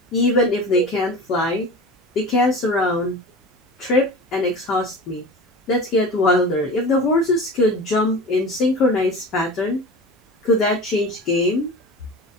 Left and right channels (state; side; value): normal; both; correlation 0.34